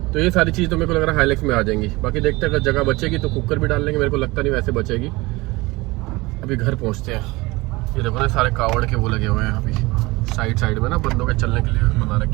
तो ये सारी चीज तो मेरे को लग रहा है हाईलैक्स में आ जाएंगी। बाकी देखते हैं अगर जगह बचेगी तो कुकर भी डाल लेंगे, मेरे को लगता नहीं वैसे बचेगी। अभी घर पहुंचते हैं। ये देखो ना सारे कावड़ के वो लगे हुए हैं अभी साइड में ना, बंदों के चलने के लिए बना रखे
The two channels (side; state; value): left; quieter; 22.2 dB